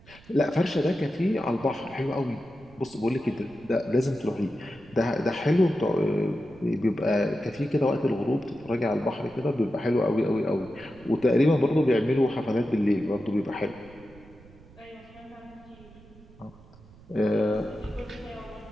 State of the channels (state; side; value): noise; right; rumble, 23 dB below the sound